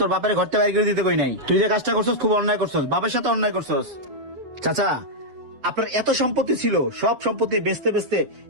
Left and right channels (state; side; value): late; left; 7.5 ms